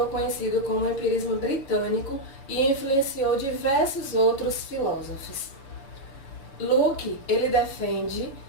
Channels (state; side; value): late; right; 7.3 ms